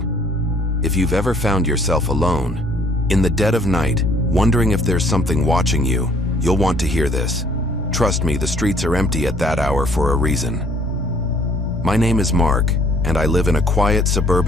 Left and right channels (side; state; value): both; normal; correlation 0.60